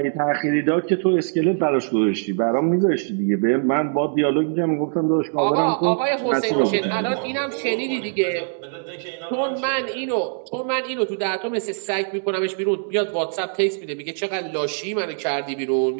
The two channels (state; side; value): silent; left; digital silence